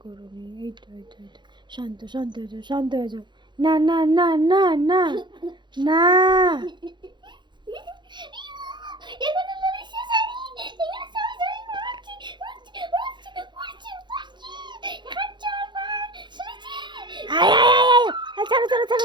করবি। এই তো এই তো এই তো, শান্ত শান্ত হয়ে যাও, শান্ত হয়ে যাও। না না না না না না, ছাড়ো ছাড়ো ছাড়ো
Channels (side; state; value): left; late; 0.22 ms